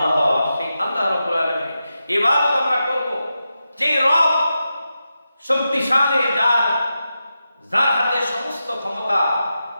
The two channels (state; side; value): inverted; both; correlation -0.90